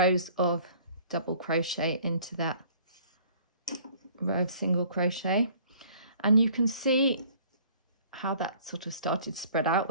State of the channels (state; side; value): inverted; both; correlation -0.54